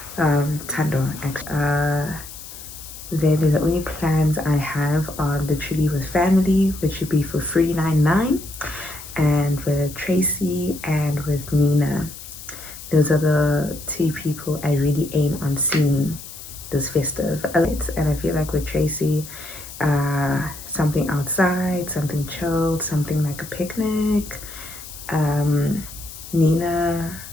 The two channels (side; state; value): left; noise; hiss, 14 dB below the sound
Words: Tando, actually. Then the only plans I have are literally with family, which would be for 399, and with Tracy and with Nina. Those are the two people I really aim on seeing this festive. And I feel like with Tracy, something outside, something chilled, something like a picnic. Nina